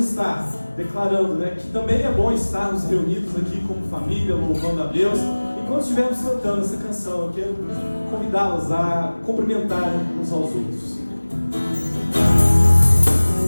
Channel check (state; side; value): inverted; both; correlation -1.00